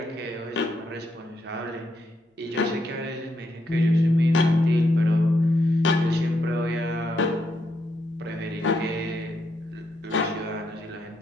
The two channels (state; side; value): normal; both; correlation 0.78